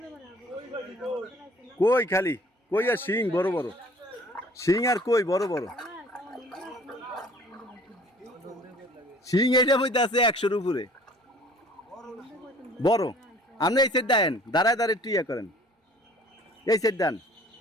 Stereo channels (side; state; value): both; normal; correlation 0.52